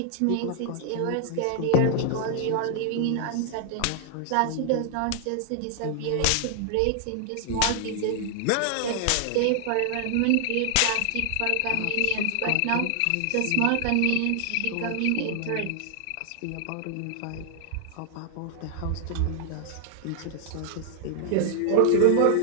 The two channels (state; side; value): different; both; correlation 0.00